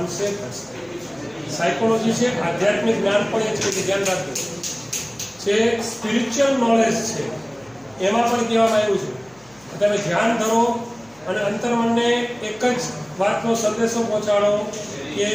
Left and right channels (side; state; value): left; noise; hum, 30 dB below the sound